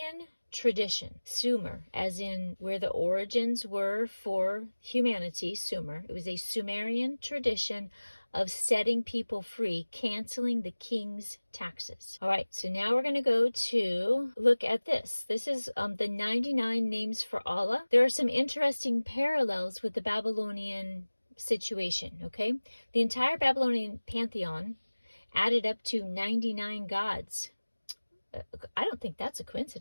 tradition. Sumer, as in where the origins were for humanity, Sumer. It was a Sumerian tradition of setting people free, canceling the king's taxes. All right, so now we're going to go to look at this. This is the 99 names for Allah. There are some interesting parallels with the Babylonian situation, okay? The entire Babylonian pantheon added up to 99 gods. I don't think that's a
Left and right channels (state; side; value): inverted; both; correlation -1.00